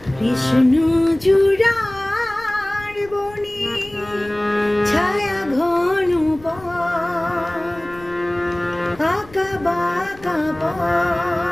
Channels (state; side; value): noise; left; rumble, 22 dB below the sound